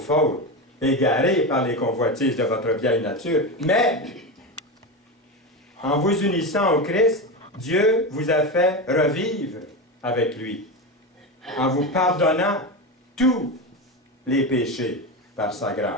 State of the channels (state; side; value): normal; both; correlation 0.18